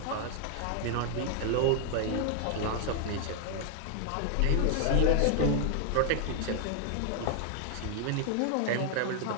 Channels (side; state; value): both; different; correlation 0.00